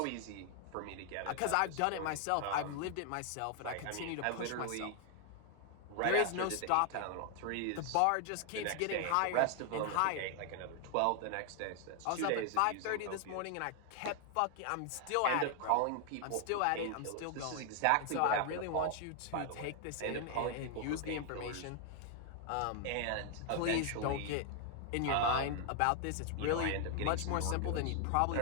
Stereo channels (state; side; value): different; both; correlation 0.00